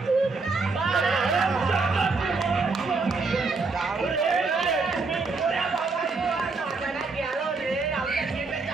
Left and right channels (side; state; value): left; quieter; 4.1 dB